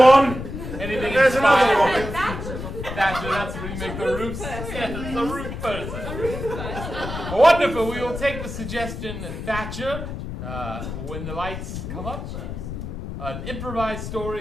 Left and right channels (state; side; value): noise; left; rumble, 7 dB below the sound